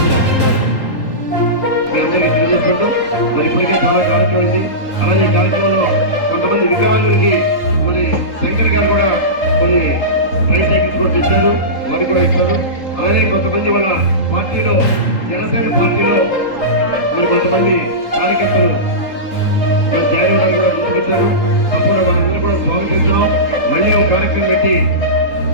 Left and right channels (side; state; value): right; late; 3.8 ms